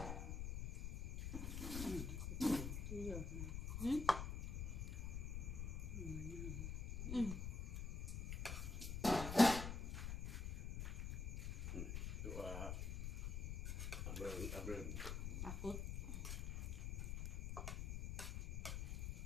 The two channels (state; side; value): noise; left; rumble, 2 dB below the sound